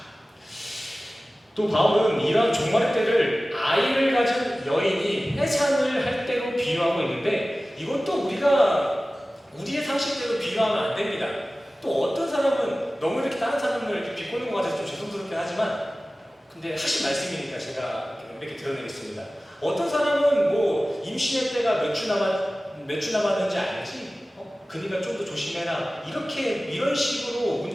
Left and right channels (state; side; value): normal; both; correlation 0.97